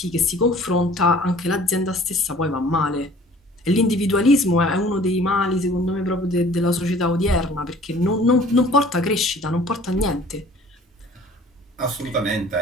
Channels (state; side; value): normal; both; correlation 0.50